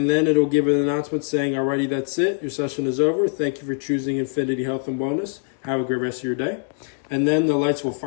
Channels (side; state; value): right; silent; digital silence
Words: then it'll give an announcement saying, alrighty, that's it. Your session is over. Thank you for choosing Infinity Health and Wellness. Have a great rest of your day. And then the lights will